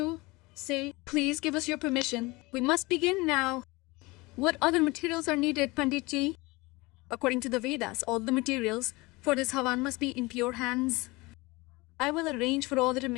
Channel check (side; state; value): right; quieter; 23.3 dB